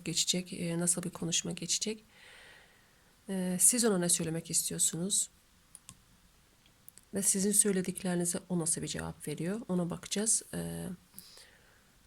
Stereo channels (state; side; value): identical; both; correlation 1.00